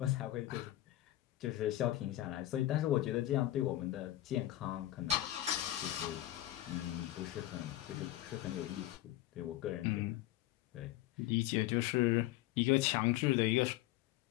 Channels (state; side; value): quieter; right; 15.2 dB